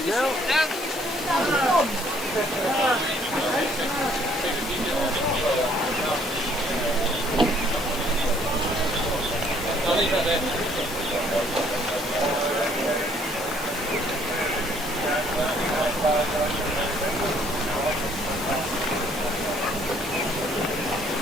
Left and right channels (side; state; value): both; normal; correlation 0.63